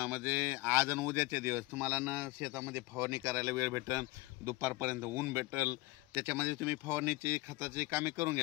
आज आणि उद्याचे दिवस तुम्हाला ना शेतामध्ये फवारणी करायला वेळ भेटेल, दुपारपर्यंत ऊन भेटेल, त्याच्यामध्ये तुम्ही फवारणीची खताची कामे करून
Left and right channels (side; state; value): right; quieter; 21.0 dB